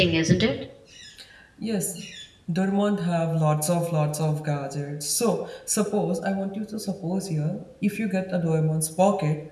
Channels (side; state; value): both; identical; correlation 1.00